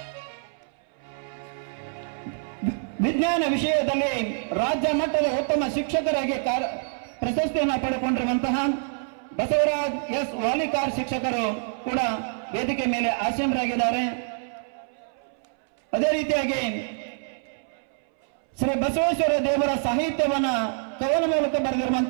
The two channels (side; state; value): left; silent; 61 dB below the other